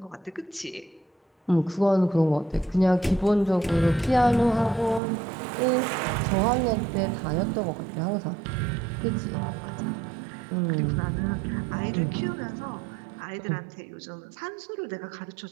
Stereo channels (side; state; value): left; drops out; at 5.0 s